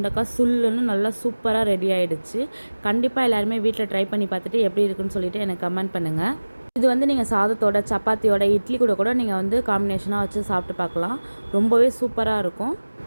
சுல்லுன்னு நல்லா சூப்பராக ரெடி ஆகிடுச்சு. கண்டிப்பாக எல்லாருமே வீட்டில் ட்ரை பண்ணி பார்த்துட்டு எப்படி இருக்குன்னு சொல்லிவிட்டு எனக்கு கமெண்ட் பண்ணுங்கள். இது வந்து நீங்கள் சாதத்தோட சப்பாத்தியோட இட்லி கூட நீங்கள் வந்து காம்பினேஷனாக வச்சு சாப்பிட்டு பார்க்கலாம். ரொம்பவே சூப்பராக இருக்கும்.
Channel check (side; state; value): both; inverted; correlation -1.00